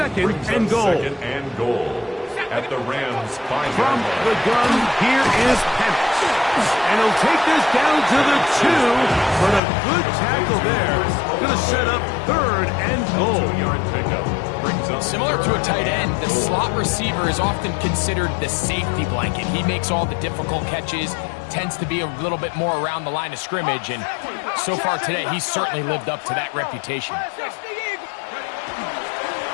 Brings and up goal. Second and goal. At the Rams' 5-yard From line. the gun, here is Penix. And he'll take this down to the 2, but a good tackle there. Going to set up 3rd and goal. 2-yard pickup. Brings up Similar to a tight end, the slot receiver is often considered the safety blanket. He makes all the difficult catches, tends to be a little bit more around the line of scrimmage, and so far today, he's certainly lived up to that reputation.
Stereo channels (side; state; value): right; drops out; at 9.6 s